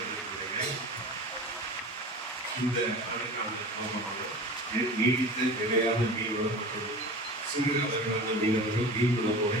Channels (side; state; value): both; normal; correlation 0.35